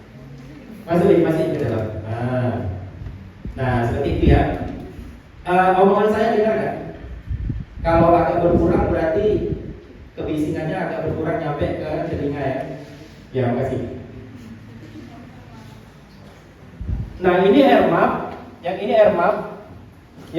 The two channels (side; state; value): both; identical; correlation 1.00